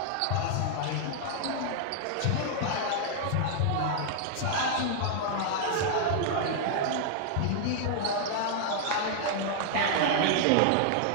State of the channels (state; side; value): different; both; correlation 0.00